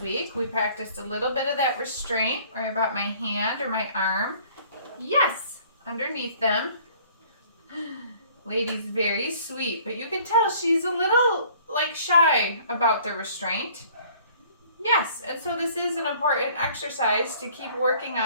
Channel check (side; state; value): both; inverted; correlation -0.54